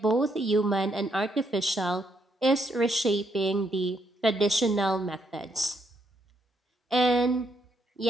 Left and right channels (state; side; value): normal; both; correlation 0.75